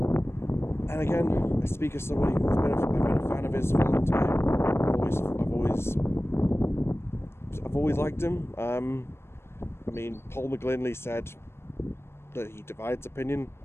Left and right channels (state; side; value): late; right; 0.12 ms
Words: And again, I speak as somebody who's been a fan of his for a long time. I've always liked him. I mean, Paul McGlinley said that he divides opinion.